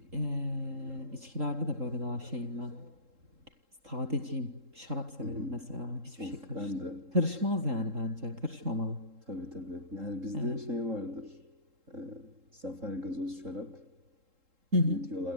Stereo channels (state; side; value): late; left; 3.7 ms